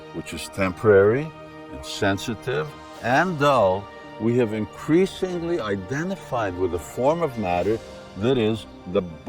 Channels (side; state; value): both; identical; correlation 1.00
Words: which is temporary, insensitive, and dull, we have increasingly identified with a form of matter that is the